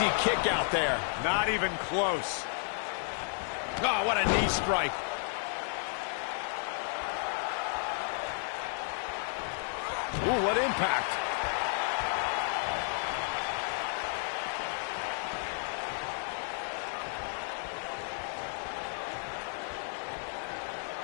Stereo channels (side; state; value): right; silent; 56 dB below the other